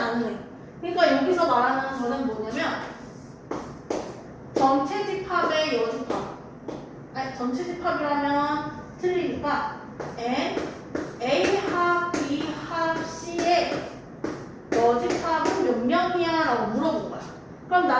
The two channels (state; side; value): identical; both; correlation 1.00